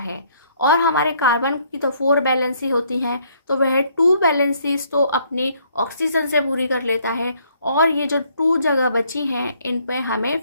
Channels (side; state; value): both; inverted; correlation -0.66